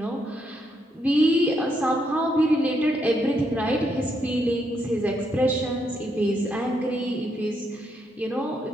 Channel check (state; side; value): normal; both; correlation 0.77